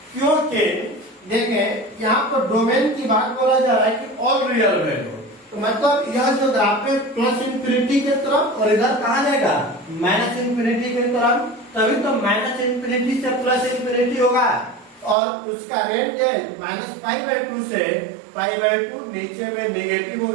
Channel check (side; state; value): left; drops out; at 15.2 s